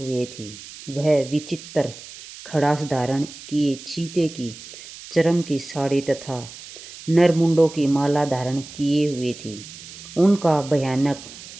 थी। वह विचित्र खड़ास धारण किए चीते की चर्म की साड़ी तथा नरमुंडों की माला धारण किए हुए थी। उनका भयानक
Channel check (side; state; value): right; noise; hiss, 16 dB below the sound